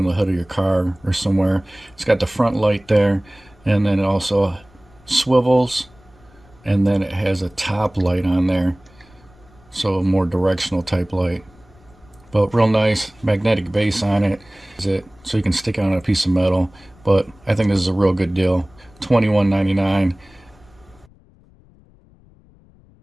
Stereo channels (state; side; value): noise; left; rumble, 28 dB below the sound